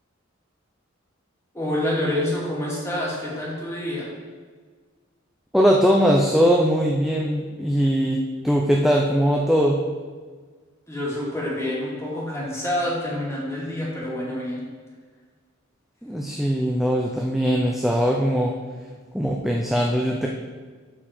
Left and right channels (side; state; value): both; normal; correlation 0.75